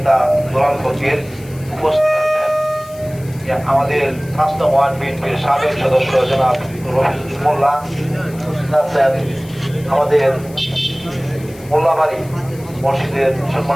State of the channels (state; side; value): noise; left; hiss, 22 dB below the sound